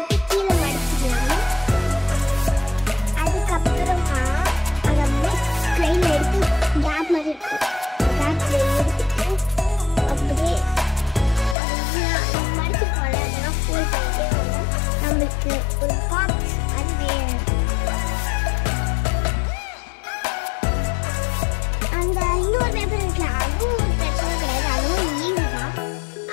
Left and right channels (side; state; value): right; drops out; at 11.6 s